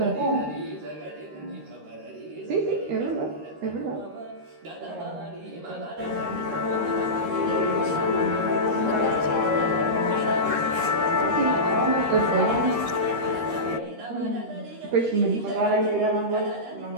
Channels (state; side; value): late; left; 13 ms